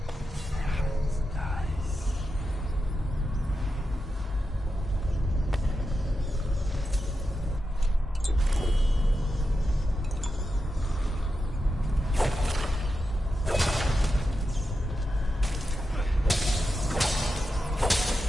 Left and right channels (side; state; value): both; normal; correlation 0.89